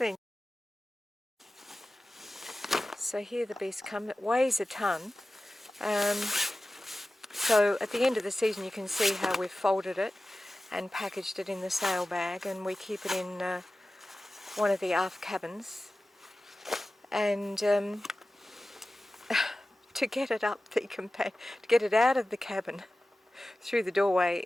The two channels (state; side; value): normal; both; correlation 0.96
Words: So here the beast comes. It weighs a ton. So at the end of the season you can see how we've folded it and packaged it in the sail bag, and we keep it in one of the aft cabins. And to get it up to get it out of the cabin through the doorway